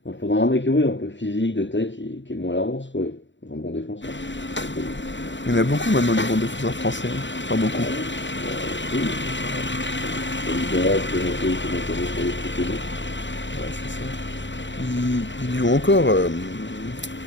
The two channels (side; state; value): right; late; 0.54 ms